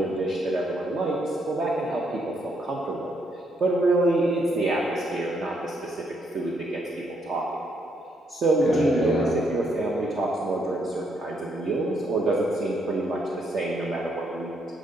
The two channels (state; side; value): normal; both; correlation 0.74